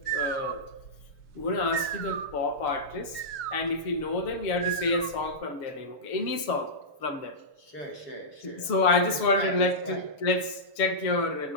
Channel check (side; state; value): right; late; 6.9 ms